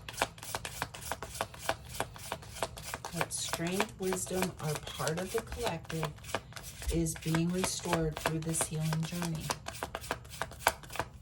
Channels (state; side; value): identical; both; correlation 1.00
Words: What strength, wisdom, or part of the collective is being restored through this healing journey?